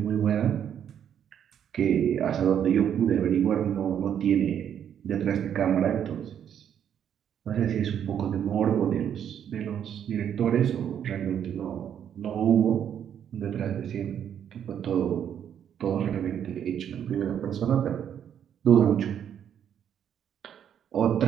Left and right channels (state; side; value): quieter; left; 9.1 dB